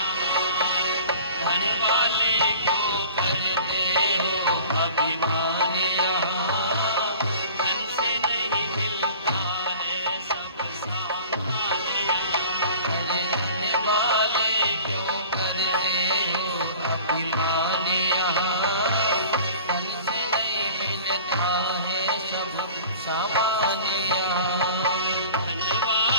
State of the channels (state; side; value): inverted; both; correlation -0.43